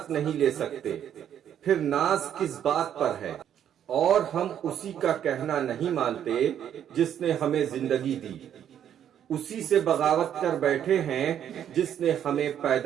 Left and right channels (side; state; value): left; quieter; 9.7 dB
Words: نہیں لے سکتے، پھر ناز کس بات پر ہے؟ اور ہم اسی کا کہنا نہیں مانتے جس نے ہمیں زندگی دی، اسی سے بغاوت کر بیٹھے ہیں جس نے ہمیں